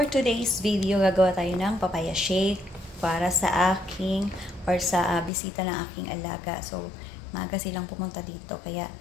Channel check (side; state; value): right; drops out; at 5.3 s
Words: today's video, gagawa tayo ng papaya shake para sa aking or sa bisita ng aking alaga. So, maaga silang pumunta dito kaya